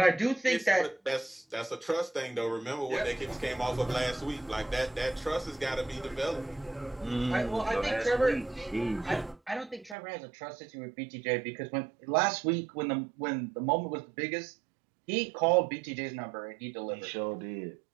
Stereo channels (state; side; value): drops out; left; at 10.0 s